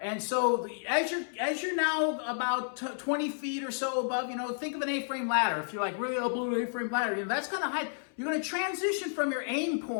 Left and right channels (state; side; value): silent; right; 57 dB below the other